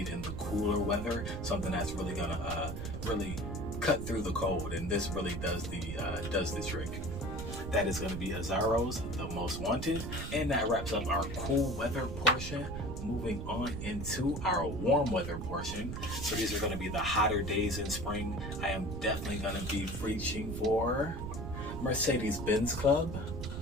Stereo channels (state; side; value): noise; right; rumble, 6 dB below the sound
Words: in the cooler weather. Something that's really gonna really cut through the cold, and this really does the trick. That is going to be Azzaro's The Most Wanted, and that wraps up our cool weather portion. moving on into our warm weather portion. So these are going to be the hotter days in spring. I am definitely going to be reaching for Mercedes-Benz Club.